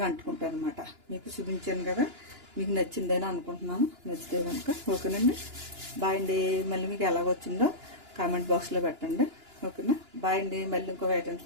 అంటుకుంటాయి అనమాట. మీకు చూపించాను కదా, మీకు నచ్చిందని అనుకుంటున్నాను. నచ్చితే కనుక ఓకేనండి. బాయ్ అండి. మళ్ళీ మీకు ఎలాగ వచ్చిందో కామెంట్ బాక్స్లో పెట్టండి. ఓకేనా. బాయ్ అండి. మళ్ళీ ఇంకొక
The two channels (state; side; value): late; left; 2.9 ms